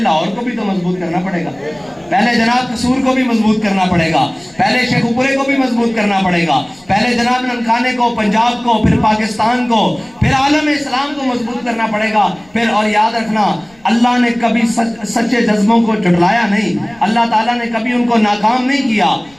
کو بھی تو مضبوط کرنا پڑے گا, پہلے جناب قصور کو بھی مضبوط کرنا پڑے گا, پہلے شیخ پورے کو بھی مضبوط کرنا پڑے گا, پہلے جناب ننکانے کو, پنجاب کو, پھر پاکستان کو, پھر عالم اسلام کو مضبوط کرنا پڑے گا. پھر اور یاد رکھنا اللہ نے کبھی سچے جذبوں کو جھٹلایا نہیں, اللہ تعالیٰ نے کبھی ان کو ناکام نہیں کیا,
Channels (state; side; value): noise; left; rumble, 29 dB below the sound